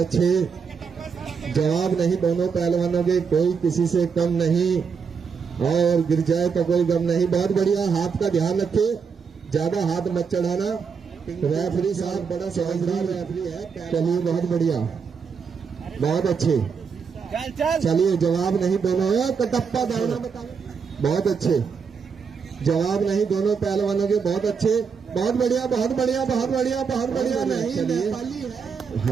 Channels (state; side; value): quieter; left; 5.9 dB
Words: जवाब नहीं दोनों पहलवानों के, कोई किसी से कम नहीं, और गिर जाए तो कोई गम नहीं। बहुत बढ़िया, हाथ का ध्यान रखे, ज्यादा हाथ मत चढ़ाना। रेफरी साहब बड़ा समझदार रेफरी है। चलिए बहुत बढ़िया, बहुत अच्छे। चलिए जवाब नहीं दोनों, कटप्पा दाना बताओ, बहुत अच्छे। जवाब नहीं दोनों पहलवानों के, बहुत अच्छे, बहुत बढ़िया, बहुत बढ़िया, बहुत बढ़िया, बहुत बढ़िया। नहीं नेपाली